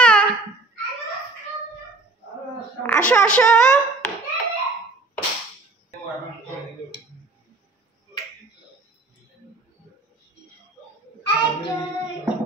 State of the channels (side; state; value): left; quieter; 3.2 dB